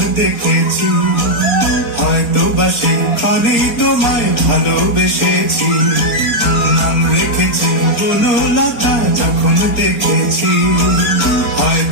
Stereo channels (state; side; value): late; right; 4.3 ms